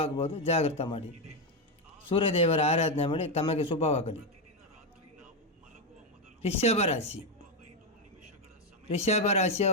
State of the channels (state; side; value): normal; both; correlation 0.06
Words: ಜಾಗ್ರತೆ ಮಾಡಿ. ಸೂರ್ಯದೇವರ ಆರಾಧನೆ ಮಾಡಿ. ತಮಗೆ ಶುಭವಾಗಲಿ. ರಿಷಭ